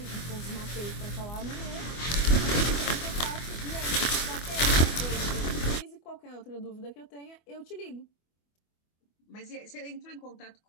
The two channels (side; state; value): right; late; 24 ms